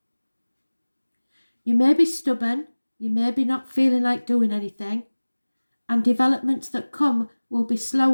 You may be stubborn, you may be not feeling like doing anything, and developments that come will be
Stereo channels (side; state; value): both; inverted; correlation -1.00